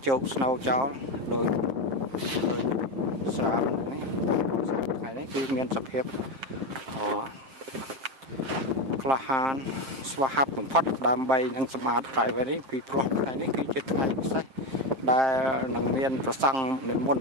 ជោគ snow ចោលដោយស្រាបនេះថ្ងៃនេះគឺមានសភាពក្លាហានស្វាហាប់បំផុតដើម្បីនឹងសម្អាត driveway នេះពីព្រោះថ្ងៃនេះគឺជាថ្ងៃពិសេសដែលនឹងមានប្រសង់និមន្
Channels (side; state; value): left; late; 7.6 ms